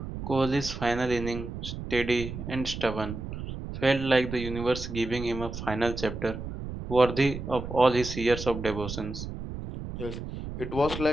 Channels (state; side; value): noise; right; rumble, 8 dB below the sound